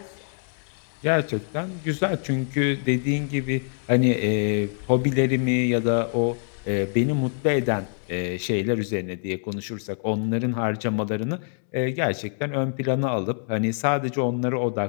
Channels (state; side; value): silent; right; 62 dB below the other